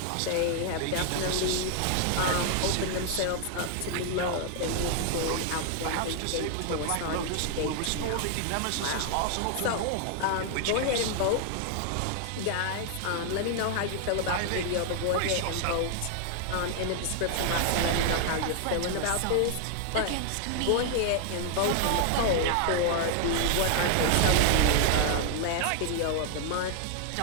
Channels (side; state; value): both; different; correlation 0.00